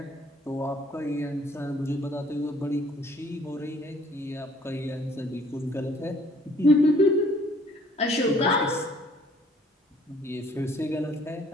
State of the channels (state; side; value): normal; both; correlation 0.59